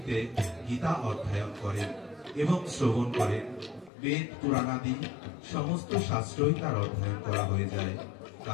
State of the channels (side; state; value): right; drops out; at 3.9 s